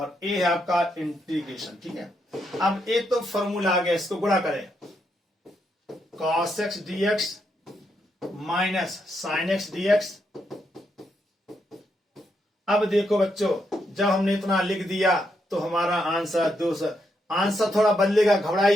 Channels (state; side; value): normal; both; correlation 0.80